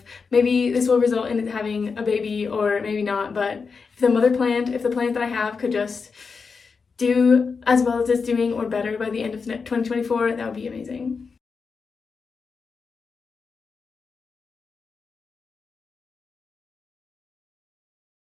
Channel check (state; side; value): quieter; right; 5.1 dB